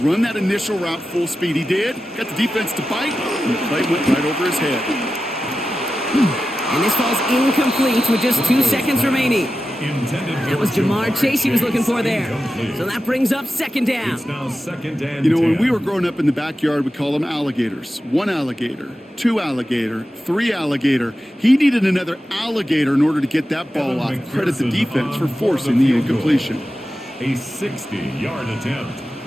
that initial route full speed. He did. Got the defense to bite, and the play went right over his head. And this falls incomplete with just 2 seconds remaining. That was Jamar Chase he was looking for there. So that brings up 2nd down. You know, when we were growing up in the backyard, we call them alligators. 1 alligator, 2 alligator, 3 alligator. He needed another alligator in order to get that ball off. Credit the defense for forcing the incompletion. A 60-yard attempt.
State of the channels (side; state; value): both; normal; correlation 0.93